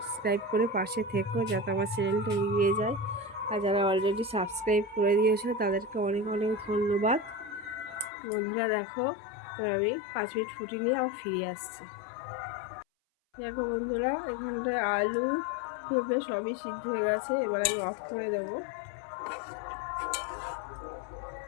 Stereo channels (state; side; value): drops out; right; at 8.1 s